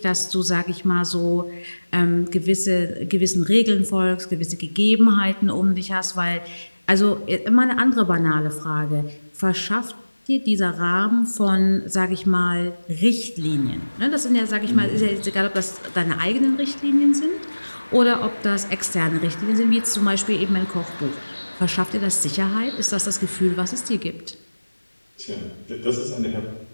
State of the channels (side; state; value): both; inverted; correlation -1.00